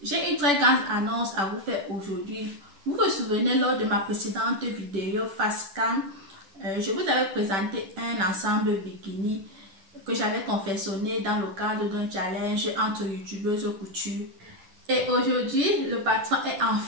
J'ai une très grande annonce à vous faire aujourd'hui. Vous vous souvenez lors de ma précédente vidéo face cam, je vous avais présenté un ensemble bikini que j'avais confectionné dans le cadre d'un challenge entre youtubeuses couture. Et aujourd'hui, le patron est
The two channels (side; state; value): left; late; 10 ms